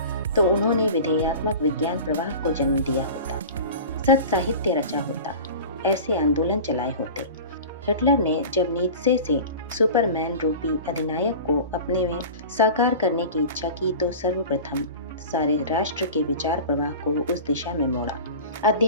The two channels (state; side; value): inverted; both; correlation -0.36